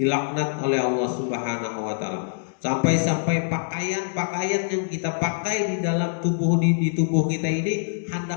oleh Allah Subhanahu wa taala. Sampai-sampai pakaian yang kita pakai di dalam tubuh di tubuh kita ini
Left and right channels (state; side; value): silent; right; digital silence